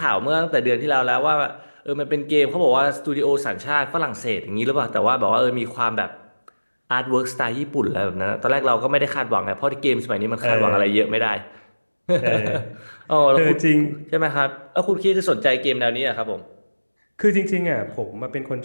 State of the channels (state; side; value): inverted; both; correlation -1.00